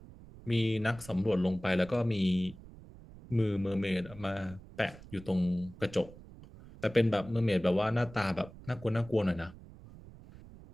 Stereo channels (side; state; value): right; noise; rumble, 19 dB below the sound